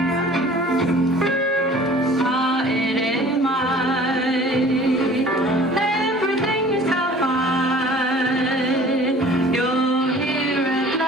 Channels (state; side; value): normal; both; correlation 0.48